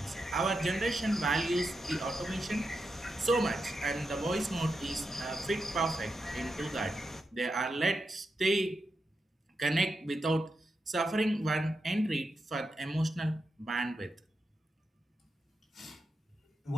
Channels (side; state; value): both; normal; correlation 0.87